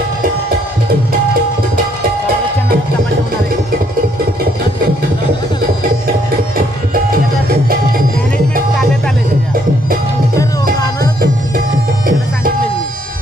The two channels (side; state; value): both; normal; correlation 0.69